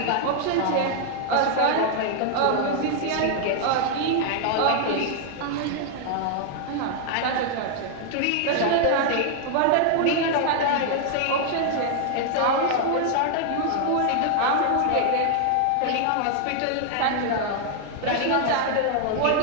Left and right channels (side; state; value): both; different; correlation 0.00